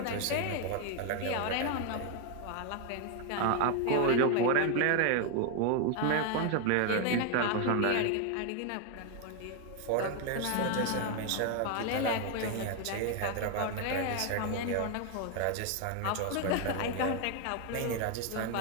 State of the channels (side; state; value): both; different; correlation 0.01